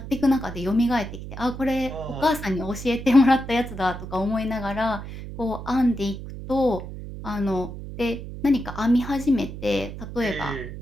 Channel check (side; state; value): right; noise; hum, 10 dB below the sound